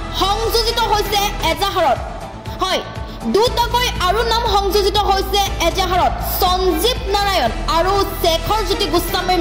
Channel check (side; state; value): both; identical; correlation 1.00